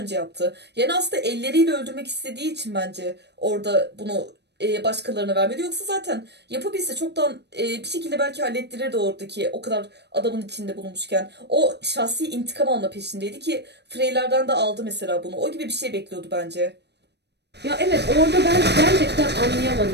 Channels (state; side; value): late; left; 0.49 ms